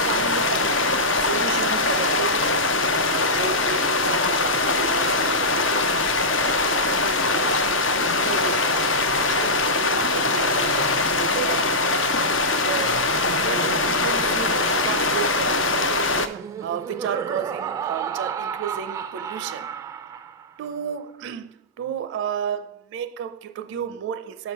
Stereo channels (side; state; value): both; normal; correlation -0.12